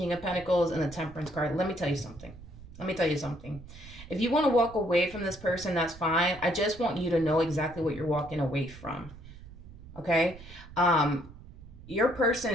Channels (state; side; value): noise; right; rumble, 17 dB below the sound